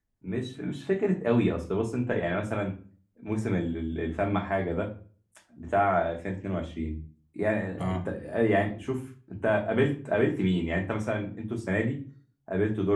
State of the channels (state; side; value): identical; both; correlation 1.00